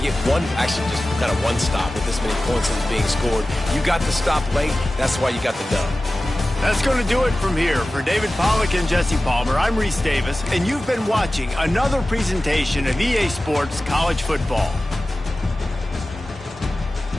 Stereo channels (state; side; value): normal; both; correlation 0.96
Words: get just kind of one stop with this many points that is being scored. You got the stop late. That's why you got the dub. That's going to do it from here. For David Pollack and Jesse Palmer, I'm Reese Davis, and you've been watching another presentation of EA Sports College Football.